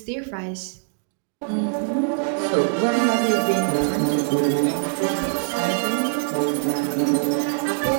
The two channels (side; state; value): left; silent; digital silence